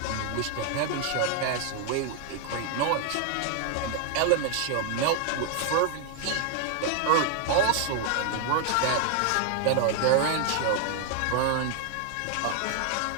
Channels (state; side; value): different; both; correlation 0.00